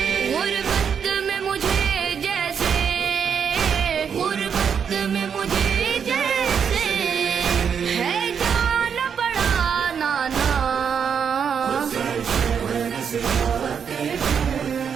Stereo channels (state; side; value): quieter; left; 7.2 dB